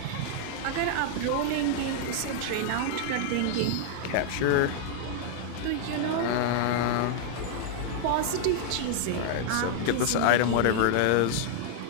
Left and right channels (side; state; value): both; different; correlation 0.00